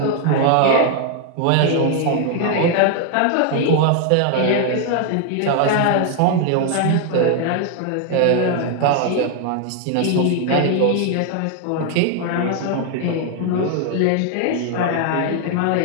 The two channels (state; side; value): different; both; correlation 0.00